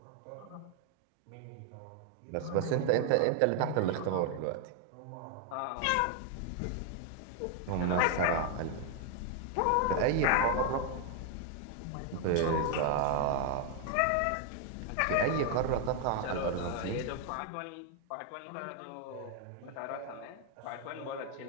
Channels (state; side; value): different; both; correlation 0.00